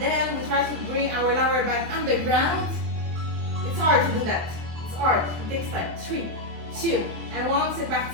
we try to bring our lower back on the ground. It's hard to do that. It's hard. It takes time. 3, 2, and 1. C'est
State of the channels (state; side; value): late; left; 24 ms